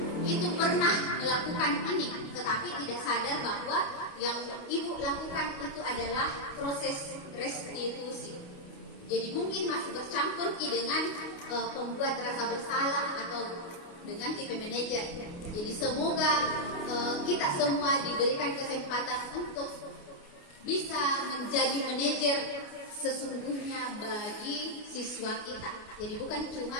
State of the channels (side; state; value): right; late; 28 ms